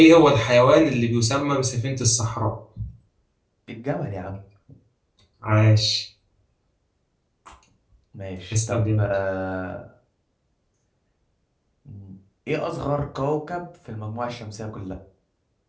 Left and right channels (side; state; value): both; identical; correlation 1.00